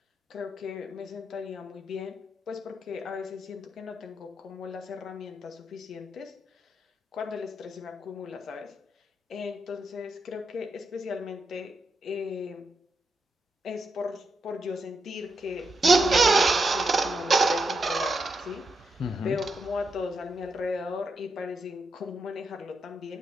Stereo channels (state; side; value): normal; both; correlation 0.82